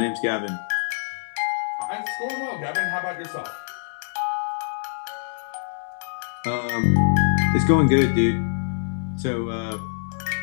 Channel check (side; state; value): right; silent; digital silence